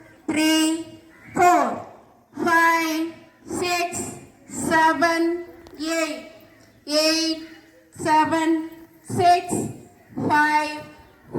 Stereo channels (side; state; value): both; identical; correlation 1.00